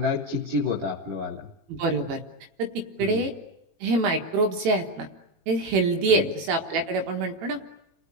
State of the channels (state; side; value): late; left; 18 ms